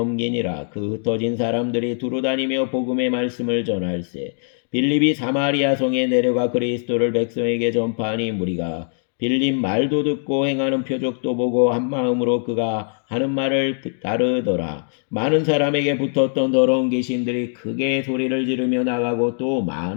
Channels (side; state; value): right; silent; digital silence